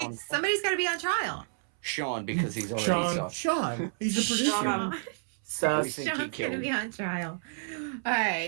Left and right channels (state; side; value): silent; left; 58 dB below the other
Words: on Somebody's got to be on trial. Sean, because he's already Sean. soft. Sean, he's the producer. Sean. We Sus. think he Sean's going to killed. be on trial. All